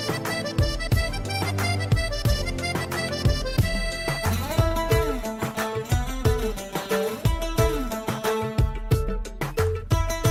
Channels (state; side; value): identical; both; correlation 1.00